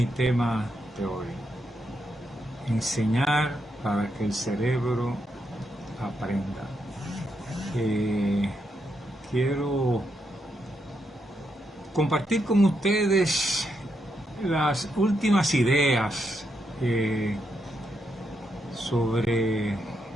tema de hoy. Enseñar para que el cerebro aprenda. Quiero compartir con ustedes las últimas ideas sobre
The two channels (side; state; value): both; normal; correlation 0.81